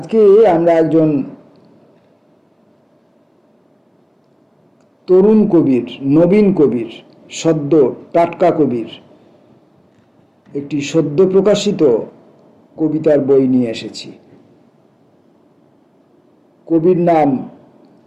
আমরা একজন তরুণ কবির, নবীন কবির, সদ্য টাটকা কবির একটি সদ্য প্রকাশিত কবিতার বই নিয়ে এসেছি। কবির নাম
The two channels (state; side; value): identical; both; correlation 1.00